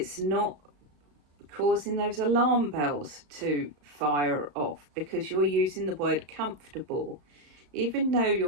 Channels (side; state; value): left; late; 35 ms